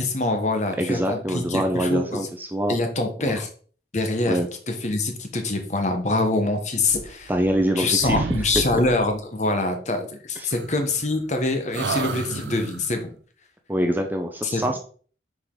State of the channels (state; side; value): normal; both; correlation 0.48